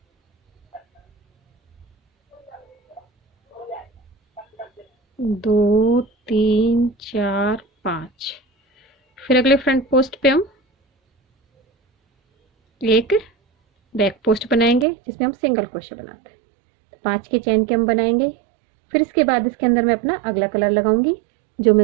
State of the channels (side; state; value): left; drops out; at 14.9 s